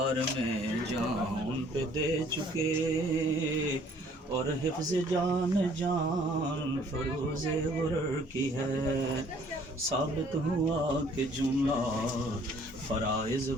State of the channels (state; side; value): normal; both; correlation 0.59